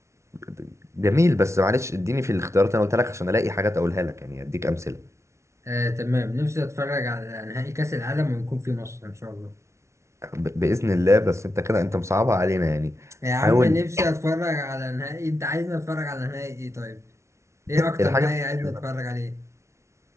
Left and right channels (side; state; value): left; late; 0.13 ms